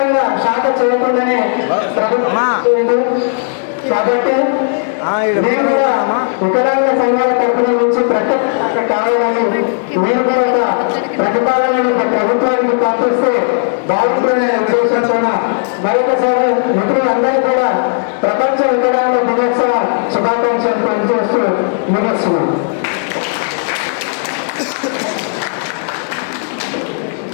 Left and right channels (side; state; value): right; silent; digital silence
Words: శాఖ చేయకుండానే ప్రభుత్వం. కాబట్టి మేము కూడా వికలాంగ సంఘాల తరఫున నుంచి ప్రత్యేక కావాలని మీరు కూడా ఒక ప్రతిపాదనను ప్రభుత్వానికి పంపిస్తే బాగుంటుందనే ఉద్దేశంతో మరొకసారి మిత్రులందరూ కూడా ప్రపంచ వికలాంగ దినోత్సవ శుభాకాంక్షలు పనిచేస్తూ ముగిస్తున్నాం.